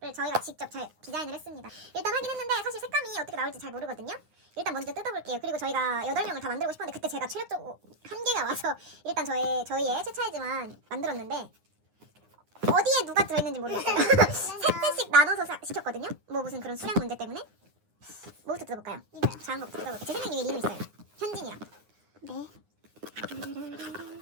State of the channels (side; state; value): left; late; 9.7 ms